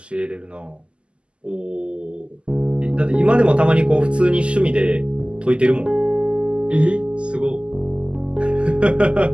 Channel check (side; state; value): left; late; 0.053 ms